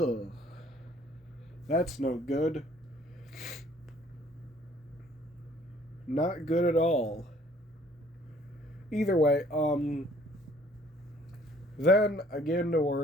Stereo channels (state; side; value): normal; both; correlation 0.58